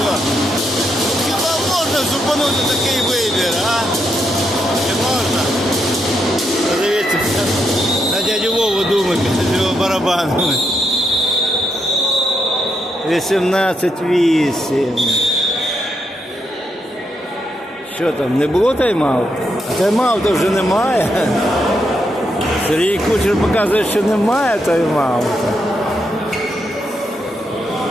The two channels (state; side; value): normal; both; correlation 0.80